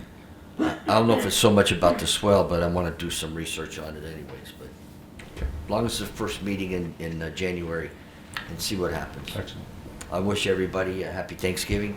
I don't know if it's so much about the swell, but I want to do some research on it anyways. But as long as it's the first meeting in January, and see what happens. Excellent. I wish everybody a happy Thanksgiving.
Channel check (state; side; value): identical; both; correlation 1.00